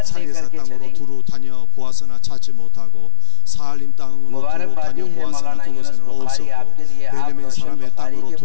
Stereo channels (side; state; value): both; different; correlation 0.00